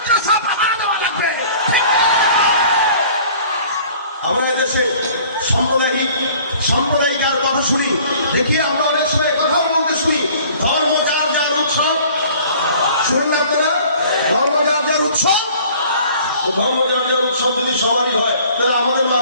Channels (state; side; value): inverted; both; correlation -0.51